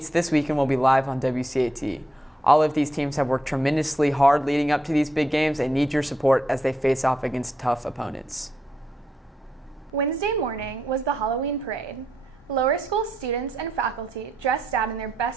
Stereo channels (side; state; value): both; normal; correlation 0.80